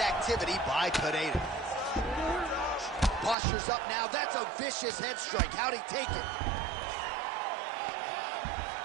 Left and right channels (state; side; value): drops out; left; at 3.4 s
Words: by Pineda. Posture's up now. That's a vicious head strike. How'd he take it?